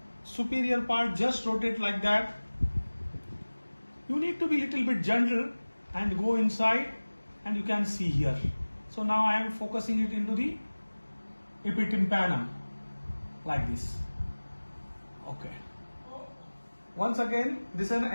superior part, just rotate like that. You need to be little bit gentle and go inside, and you can see here. So now I am focusing it into the epitympanum like this. Okay. Once again, this is an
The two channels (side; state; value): both; inverted; correlation -1.00